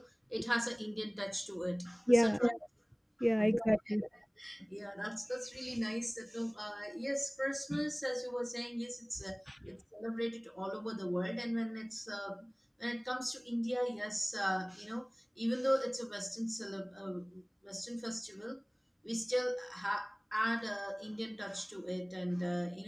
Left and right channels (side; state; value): both; identical; correlation 1.00